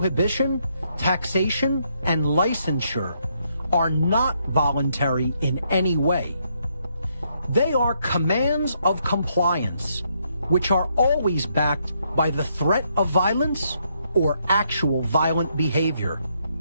taxation, and licensure, are not voluntary in any way. They are commands of compliance, which are always backed by the threat of violence or actual violent behavior.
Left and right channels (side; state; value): both; inverted; correlation -0.75